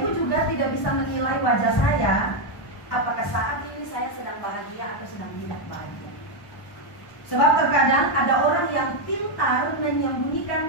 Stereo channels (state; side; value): late; right; 1.1 ms